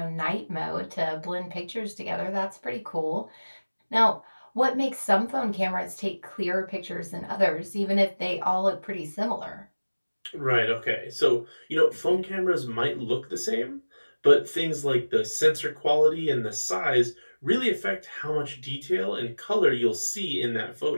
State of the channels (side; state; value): both; inverted; correlation -1.00